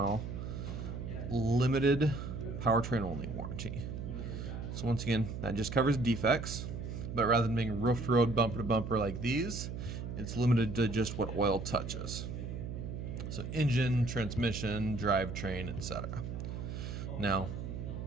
limited powertrain only warranty. So once again, that just covers defects, but rather than being roof to road, bumper to bumper like these, it's limited to just what oil touches. So engine, transmission, drivetrain, etc. Now,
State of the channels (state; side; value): noise; right; hum, 6 dB below the sound